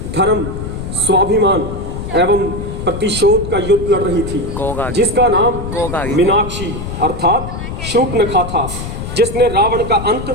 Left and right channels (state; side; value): noise; left; rumble, 7 dB below the sound